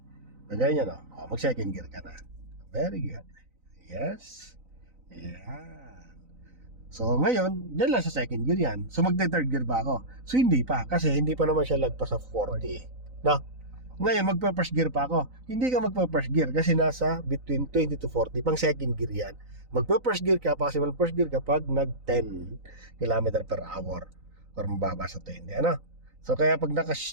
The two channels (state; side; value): late; left; 3.9 ms